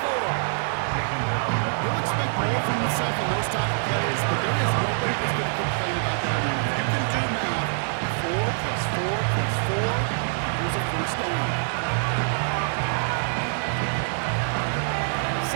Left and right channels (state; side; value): silent; left; 62 dB below the other